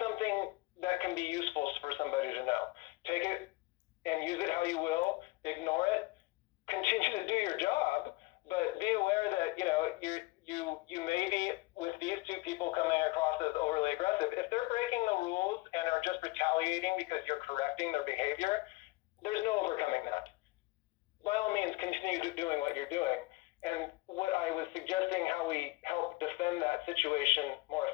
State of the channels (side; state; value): right; quieter; 22.3 dB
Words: something that can be useful for somebody to know. Take it and use it how you will, ignore it, continue to do your job, but be aware that, you may be, with these two people coming across as overly aggressive, if they're breaking the rules and are just retaliating because you're correcting their behavior, there's no overcoming that. By all means, continue doing what you're doing. And what I was suggesting, how we help defend that situation more